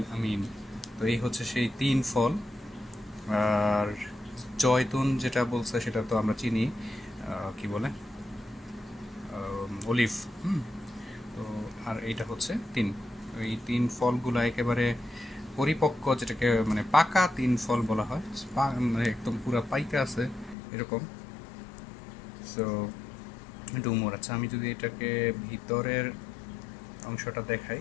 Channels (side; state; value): right; drops out; at 20.6 s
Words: আমিন। তো এই হচ্ছে সেই তিন ফল। আর জয়তুন যেটা বলছে সেটা তো আমরা চিনি, কি বলে, অলিভ। তো আর এইটা হচ্ছে তিন। এই তিন ফলগুলো একেবারে পরিপক্ক, যেটাকে মানে পাকা তিন ফল বলা হয়। মানে একদম পুরা পাইকা আছে এরকম। সো ডুমুর। আচ্ছা, আমি যদি এটাকে ভিতরের অংশটা দেখাই